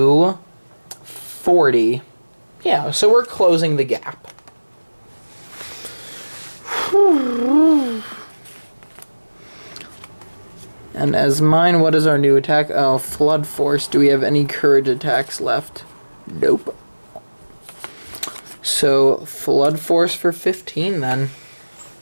40. Yeah, so we're closing the gap. And as mine, what is our new attack? Oh, Flood Force. Do we have any courage attacks left? Nope. So, Flood Force for 15 then.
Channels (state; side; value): inverted; both; correlation -1.00